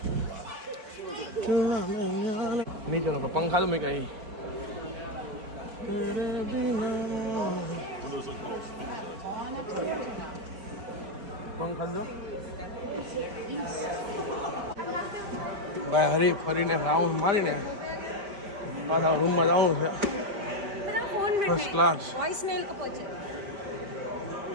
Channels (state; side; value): late; left; 4.7 ms